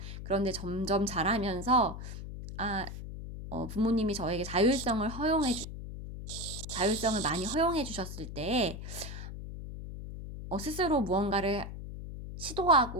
그런데 점점 자라면서, 부모님이 저에게 자율성을 많이 허용해 주셨을 때, 스스로 무언가를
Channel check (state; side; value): noise; left; hum, 9 dB below the sound